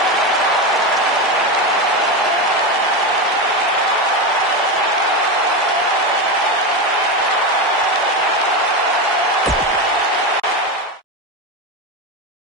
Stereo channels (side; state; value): both; normal; correlation 0.15